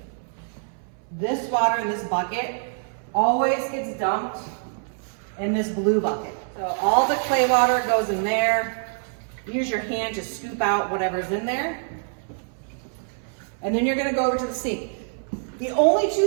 This water in this bucket always gets dumped in this blue bucket. So all the clay water goes in there. Use your hand to scoop out whatever's in there. And then you're gonna go over to the sink. The only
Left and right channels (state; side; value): silent; left; 60 dB below the other